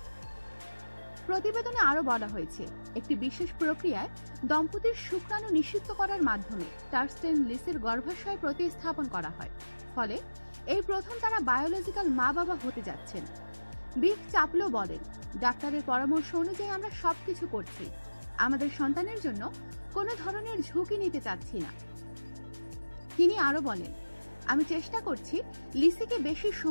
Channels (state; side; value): inverted; both; correlation -1.00